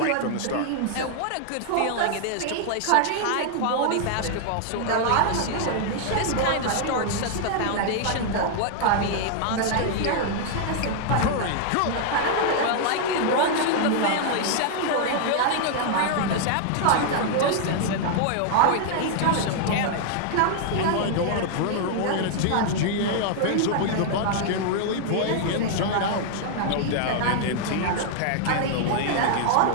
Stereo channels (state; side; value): different; both; correlation 0.00